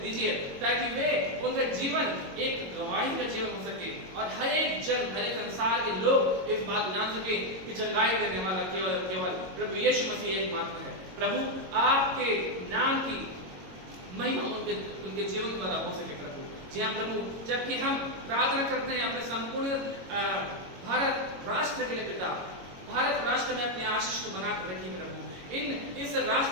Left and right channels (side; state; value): left; late; 22 ms